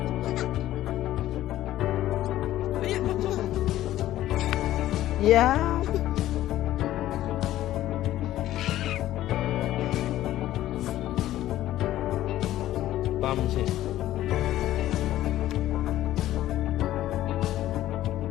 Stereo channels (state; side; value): quieter; right; 13.9 dB